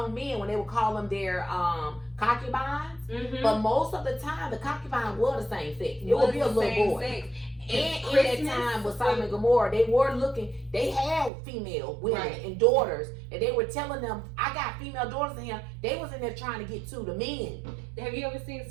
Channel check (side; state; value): left; drops out; at 11.3 s